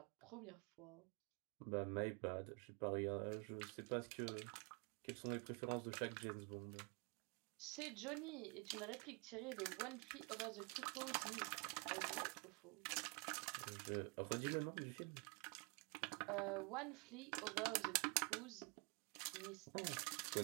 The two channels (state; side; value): quieter; left; 32.1 dB